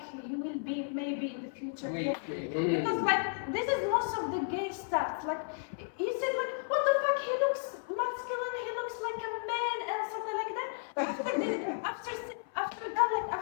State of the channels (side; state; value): right; silent; 55 dB below the other